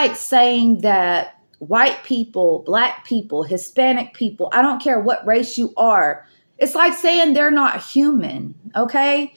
saying that white people, black people, Hispanic people, I don't care what race you are, it's like saying they're not human, okay?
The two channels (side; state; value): both; inverted; correlation -1.00